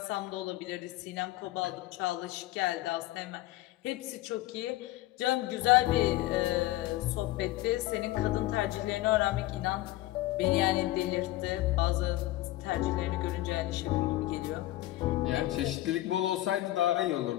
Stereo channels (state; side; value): quieter; right; 16.6 dB